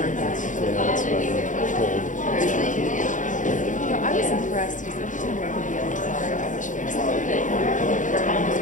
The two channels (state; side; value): late; right; 0.37 ms